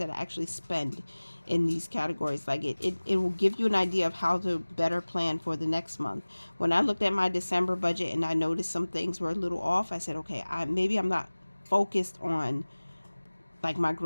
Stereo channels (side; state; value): both; inverted; correlation -1.00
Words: I actually spend in these categories? Like it will give you an idea of how to better plan for the next month. When I looked at my December budget and I noticed some things were a little off, I said, okay, maybe I'm not focused on like my